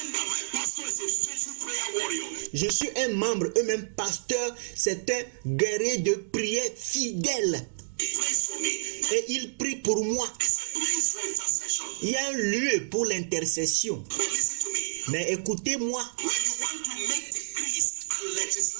My pastor is a faithful prayer warrior. Je suis un membre, eux-mêmes pasteur, c'est un guerrier de prière fidèle. He prays for me. Et il prie pour moi. There's a place for intercession. Il y a un lieu pour l'intercession. But listen to me. Mais écoutez-moi, When you want to make decrees and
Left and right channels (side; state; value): left; silent; digital silence